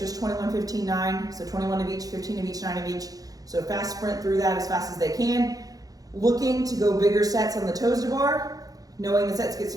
21, 15, 9. So 21 of each, 15 of each, 9 of each. So fast sprint through that as fast as they can. Looking to go bigger sets on the toes to bar, knowing the sets get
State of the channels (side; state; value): left; late; 0.18 ms